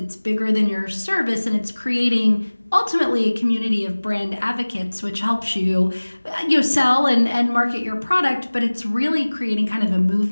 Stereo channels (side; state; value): both; inverted; correlation -1.00